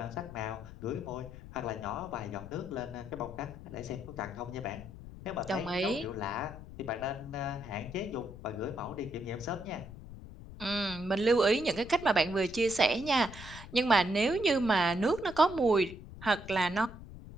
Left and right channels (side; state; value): left; noise; rumble, 14 dB below the sound